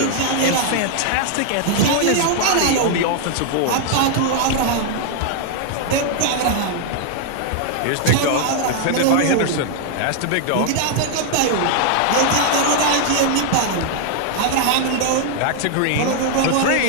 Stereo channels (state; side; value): different; both; correlation 0.00